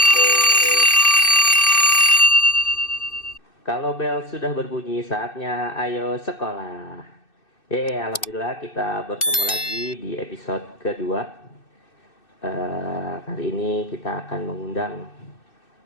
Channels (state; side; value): late; right; 2.6 ms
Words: Kalau bel sudah berbunyi, saatnya ayo sekolah. Alhamdulillah kita bertemu lagi di episode kedua. Kali ini kita akan mengundang